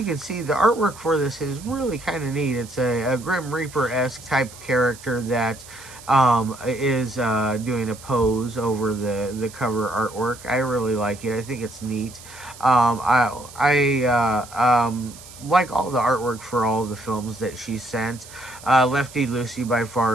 can see, the artwork for this is really kind of neat. It's a Grim Reaper-esque type character that is doing a pose over the cover artwork. I really like it. I think it's neat. I like all the artwork for all the films that she sent. Lefty Lucy by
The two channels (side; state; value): right; noise; hiss, 18 dB below the sound